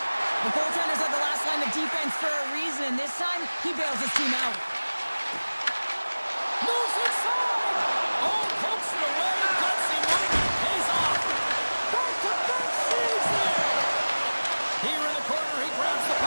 The goaltenders are the last line of defense for a reason. This time, he bails his team out. Moves inside. Oh, pokes it away. Gutsy one. Pays off. Back-to-back saves there. Here in the corner, he grabs the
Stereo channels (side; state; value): both; inverted; correlation -1.00